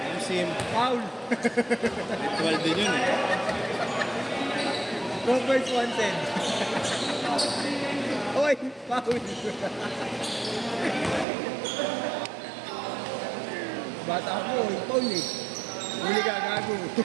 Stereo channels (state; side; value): drops out; left; at 11.2 s